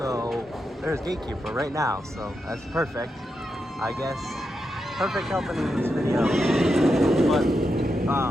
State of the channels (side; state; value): both; normal; correlation 0.86